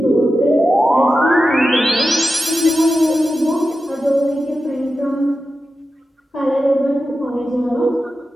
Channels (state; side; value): normal; both; correlation 0.92